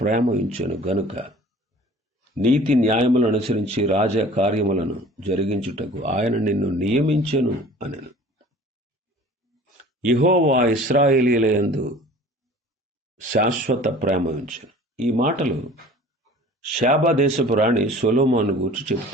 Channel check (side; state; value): both; normal; correlation 0.46